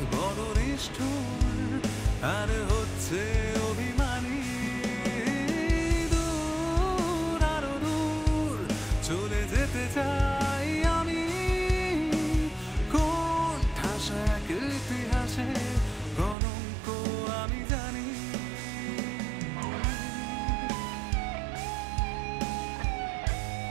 বড় নিষ্ঠুর, আর হচ্ছে অভিমানী। দূর, আরো দূর চলে যেতে চাই আমি। কোন ঠাসা এক ইতিহাসে কলঙ্ক আমি জানি।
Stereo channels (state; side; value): drops out; left; at 16.4 s